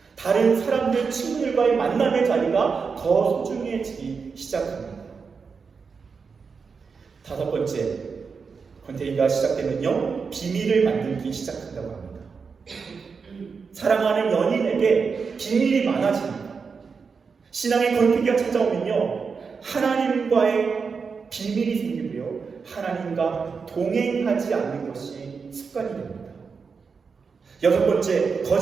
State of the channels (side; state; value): left; quieter; 5.4 dB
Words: 다른 사람들, 친구들과의 만남의 자리가 더 소중해지기 시작합니다. 다섯 번째, 권태기가 시작되면요, 비밀을 만들기 시작한다고 합니다. 사랑하는 연인에게 비밀이 많아집니다. 신앙의 권태기가 찾아오면요, 하나님과의 비밀이 생기고요, 하나님과 동행하지 않는 것이 습관이 됩니다. 여섯 번째,